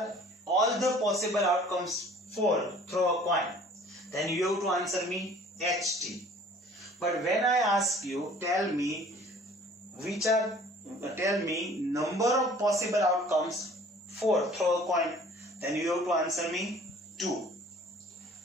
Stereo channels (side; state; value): both; normal; correlation 0.51